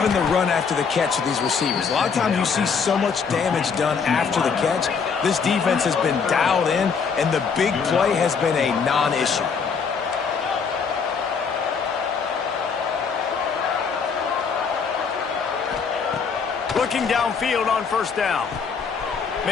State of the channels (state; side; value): quieter; right; 5.8 dB